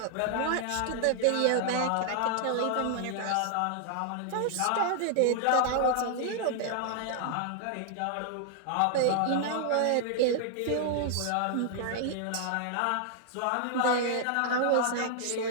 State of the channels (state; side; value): different; both; correlation 0.00